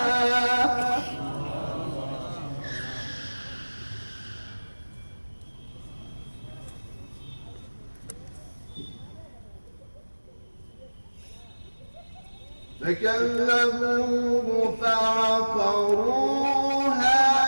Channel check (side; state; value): both; inverted; correlation -1.00